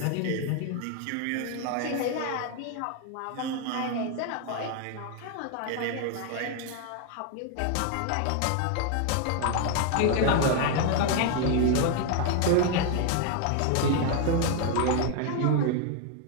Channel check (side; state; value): both; different; correlation 0.00